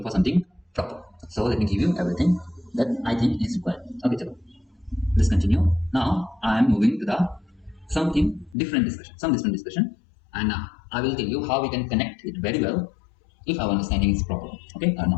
for something proper. So let me give you everything that I think is required. Okay, chalo. Let's continue. Now I am moving to the some different discussion, and I will tell you how we can connect it very well if our understanding is proper. Okay, or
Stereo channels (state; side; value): drops out; right; at 8.6 s